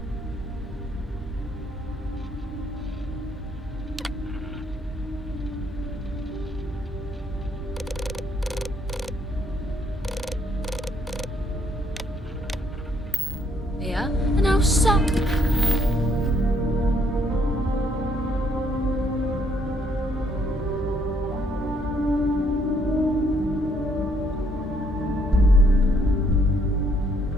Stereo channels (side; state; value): both; normal; correlation 0.69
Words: Yeah, and how so?